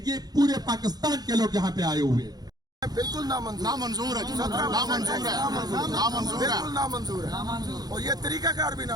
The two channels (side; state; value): left; late; 0.19 ms